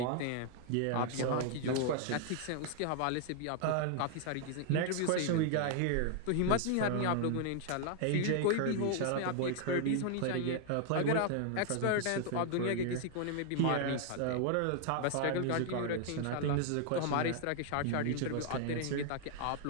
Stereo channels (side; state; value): both; different; correlation 0.00